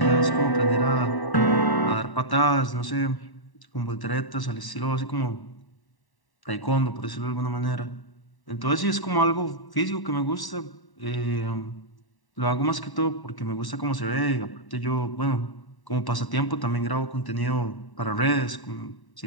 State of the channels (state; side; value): late; right; 1.1 ms